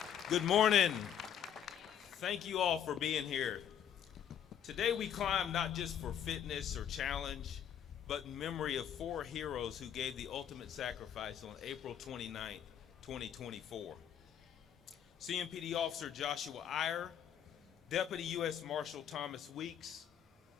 Good morning. Thank you all for being here. Today we climb not just for fitness or challenge, but in memory of 4 heroes who gave the ultimate sacrifice on April 29th, 2024. CMPD Officer Joshua Iyer, Deputy U.S. Marshal Thomas Weeks,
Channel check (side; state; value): right; quieter; 9.3 dB